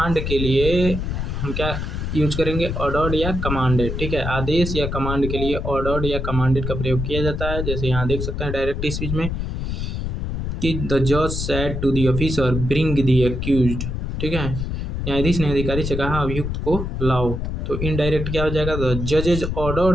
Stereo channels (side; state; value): left; noise; rumble, 3 dB below the sound